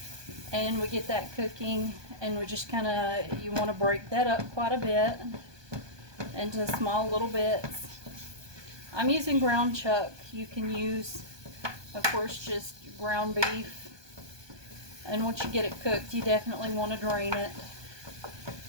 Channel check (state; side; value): late; left; 1.2 ms